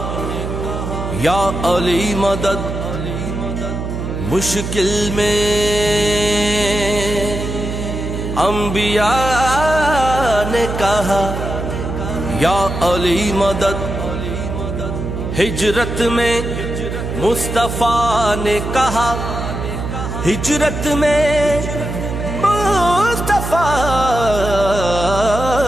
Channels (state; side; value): noise; right; hum, 5 dB below the sound